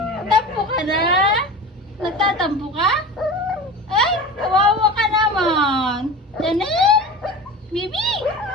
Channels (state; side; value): normal; both; correlation 0.33